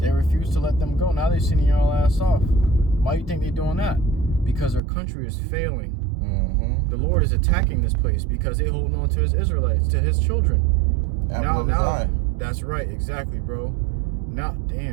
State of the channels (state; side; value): drops out; left; at 4.8 s